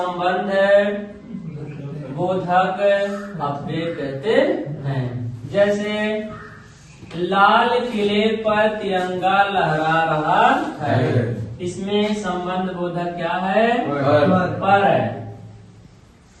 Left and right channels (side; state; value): both; identical; correlation 1.00